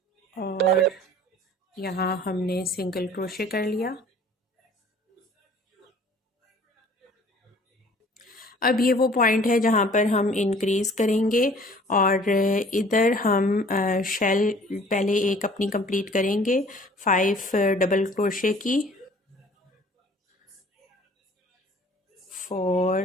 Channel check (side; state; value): both; normal; correlation 0.52